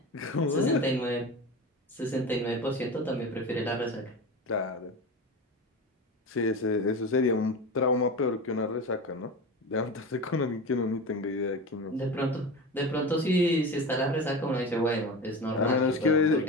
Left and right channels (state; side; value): normal; both; correlation 0.27